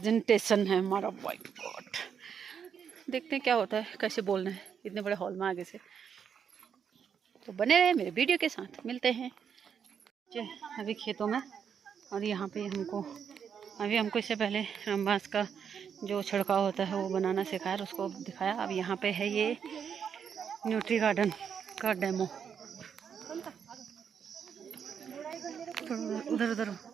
है हमारा। व्हाइट बोर्ड देखते हैं क्या होता है, कैसे बोलना है इतने बड़े हॉल में आगे से। तो बने रहे मेरे वीडियो के साथ। मिलते हैं अभी खेतों में। और यहाँ पे हमको इससे पहले रामबांस का जो छिड़काव होता है वो बनाना सिखाया, उसको दिखाया। अब यहाँ पे है ये न्यूट्री गार्डन का डेमो। उधर उधर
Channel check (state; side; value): quieter; left; 7.4 dB